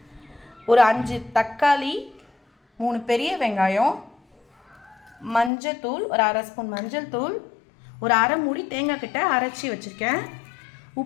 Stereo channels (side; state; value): right; drops out; at 5.5 s